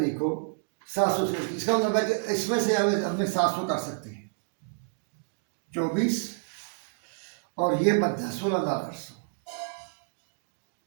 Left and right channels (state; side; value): silent; left; digital silence